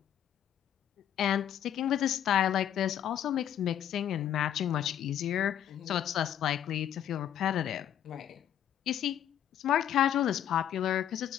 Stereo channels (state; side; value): quieter; right; 10.4 dB